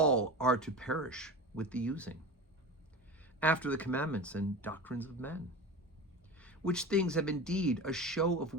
are to perish with the using, after the commandments and doctrines of men, which things have indeed a show of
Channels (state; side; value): normal; both; correlation 0.29